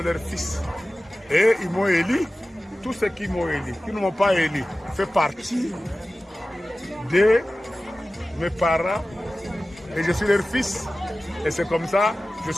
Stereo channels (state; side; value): normal; both; correlation 0.96